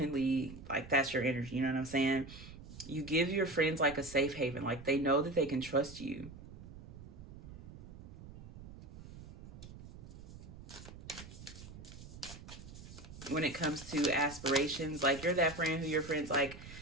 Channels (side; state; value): right; noise; rumble, 15 dB below the sound